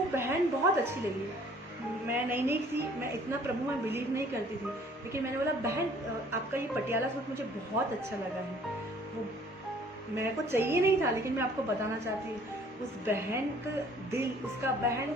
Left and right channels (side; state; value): both; normal; correlation 0.56